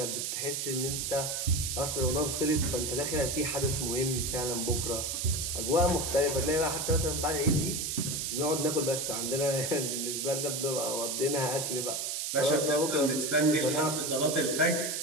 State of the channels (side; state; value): right; noise; hiss, 2 dB below the sound